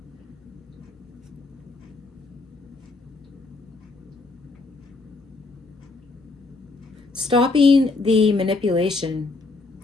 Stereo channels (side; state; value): right; quieter; 3.6 dB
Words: Stopping the manipulation.